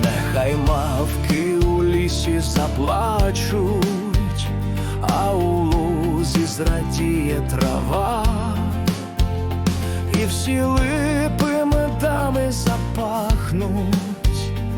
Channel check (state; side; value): identical; both; correlation 1.00